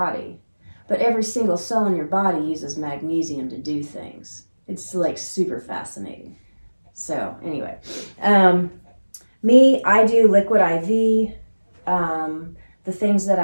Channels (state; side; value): inverted; both; correlation -1.00